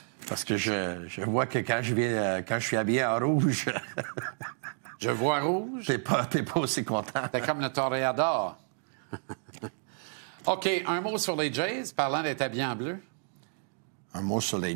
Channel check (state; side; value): silent; left; digital silence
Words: Parce que je vois que quand je suis habillé en rouge... Je vois rouge. T'es pas aussi content. T'es comme le toréador. OK, un mot sur les Jays, parlant d'être habillé en bleu. Un mot sur